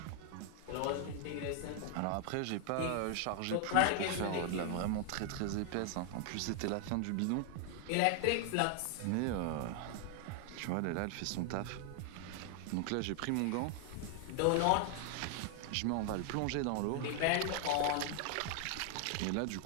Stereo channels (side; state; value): both; different; correlation 0.00